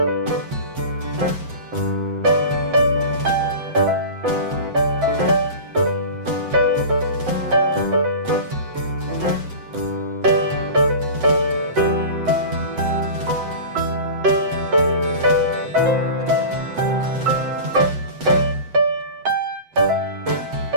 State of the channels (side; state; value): left; late; 8.0 ms